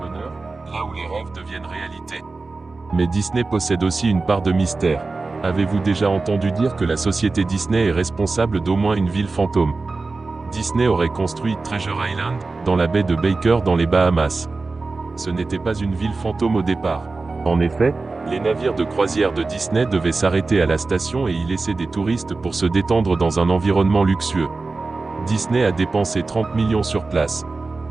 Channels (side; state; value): left; quieter; 3.7 dB